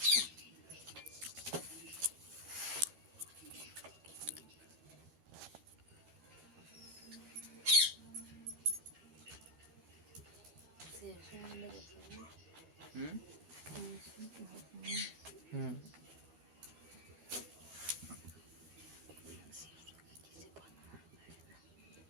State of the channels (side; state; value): left; late; 12 ms